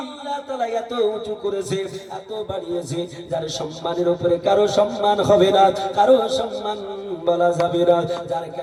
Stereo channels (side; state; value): both; identical; correlation 1.00